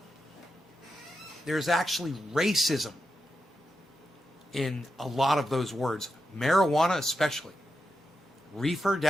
There's actually racism in a lot of those words. Marijuana especially. Reefer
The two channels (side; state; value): both; normal; correlation 0.87